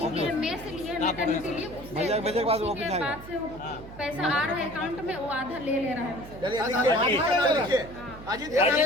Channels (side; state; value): right; noise; hum, 15 dB below the sound